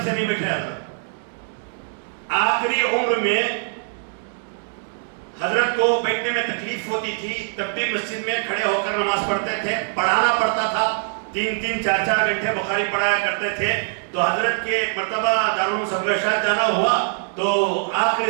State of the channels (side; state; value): left; silent; digital silence